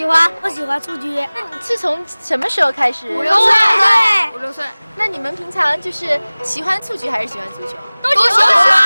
欢。我喜欢蹴鞠。那你是从什么时候开始？5、6岁。5、6岁。那你们平常就是喜欢蹴鞠还是喜欢足球？都喜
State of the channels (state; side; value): inverted; both; correlation -1.00